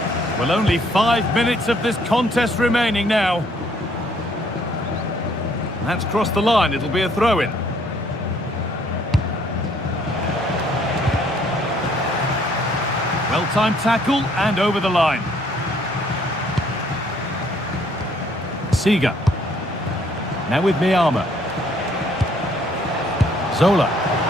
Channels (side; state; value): both; normal; correlation 0.64